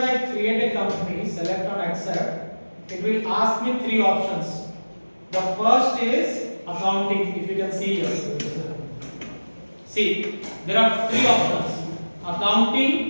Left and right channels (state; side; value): inverted; both; correlation -1.00